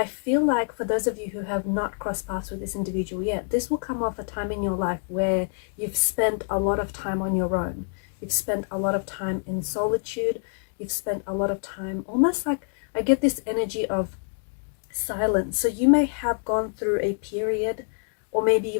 feel like for those of you who have not crossed paths with this individual yet, this will come off a time in your life where you've spent a lot of time on your own. You've spent a lot of time in solitude. You've spent a lot of time almost like, I get this energy of silence. So you may have gone through a period, or maybe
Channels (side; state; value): right; silent; 61 dB below the other